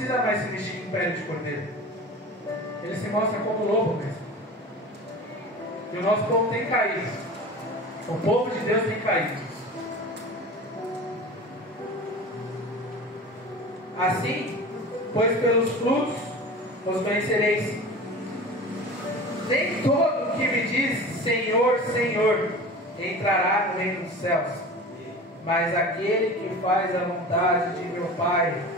mais se vestir em pele de cordeiro. Ele se mostra como lobo mesmo. E o nosso povo tem caído. O povo de Deus tem caído. Assim, pois pelos frutos os conhecereis. Nem todo que me diz Senhor, Senhor entrará no reino dos céus, mas aquele que faz a vontade de meu Pai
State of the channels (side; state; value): both; normal; correlation 0.35